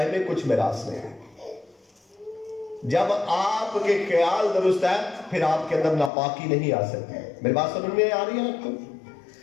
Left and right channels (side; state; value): right; drops out; at 6.1 s